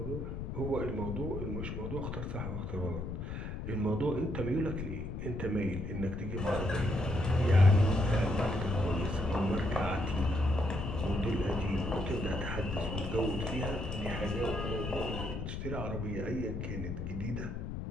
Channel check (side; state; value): left; noise; rumble, 5 dB below the sound